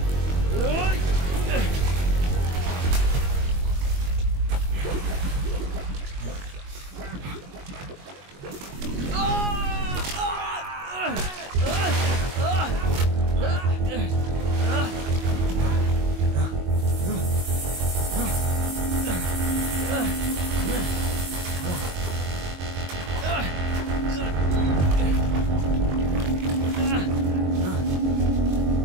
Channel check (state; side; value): late; left; 22 ms